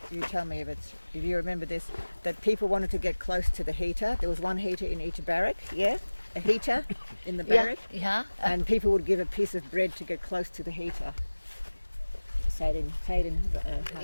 you tell me if you remember this, that people wanted to get close to the heater. There was one heater in each barrack, a heater in the barrack. Yeah. And people would give a piece of bread to get close to the heater.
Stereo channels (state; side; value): inverted; both; correlation -1.00